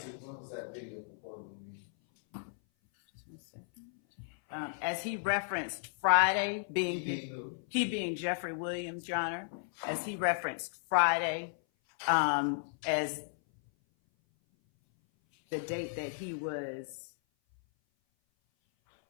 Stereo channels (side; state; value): right; silent; 55 dB below the other